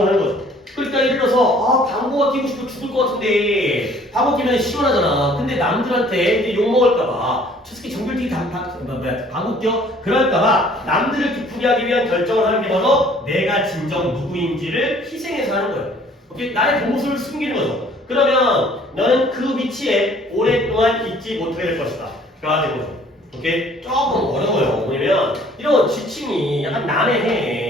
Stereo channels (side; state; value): both; normal; correlation 0.56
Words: 하는 거죠. 그러니까 예를 들어서 방구가 끼고 싶어 죽을 것 같은데 방구 끼면 시원하잖아. 근데 남들한테 이제 욕먹을까봐 솔직히 정글튀기 방구 껴? 그럴까봐 남들을 기쁘게 하기 위한 결정을 하는 게 바로 내가 진정 누구인지를 희생해서 하는 거예요. 오케이? 나의 본모습을 숨기는 거죠. 그러면 너는 그 위치에 오랫동안 있지 못하게 될 것이다. 가 되는 거죠. 오케이? 조금 어려워요. 뭐냐면 이런 지침이 약간